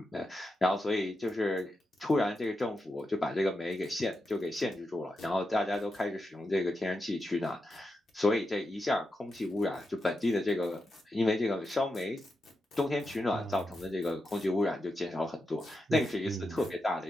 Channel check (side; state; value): both; normal; correlation 0.87